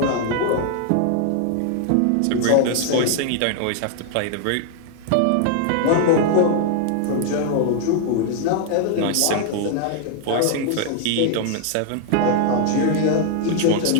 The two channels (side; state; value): both; different; correlation 0.00